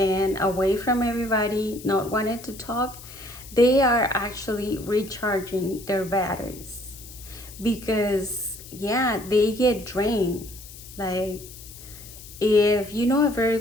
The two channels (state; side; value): noise; left; hiss, 17 dB below the sound